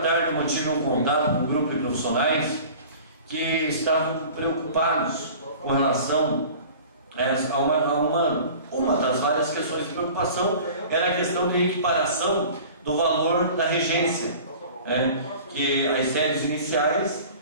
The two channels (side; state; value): both; inverted; correlation -0.42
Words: tarde eu mantive um contato com um grupo de profissionais que estavam preocupados com relação a uma das várias questões de preocupação, era a questão de equiparação do valor da regência, que as séries iniciais,